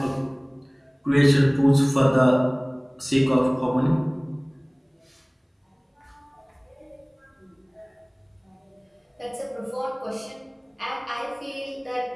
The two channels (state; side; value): identical; both; correlation 1.00